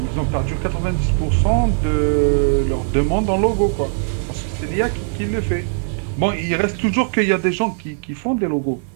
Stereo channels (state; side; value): silent; left; 66 dB below the other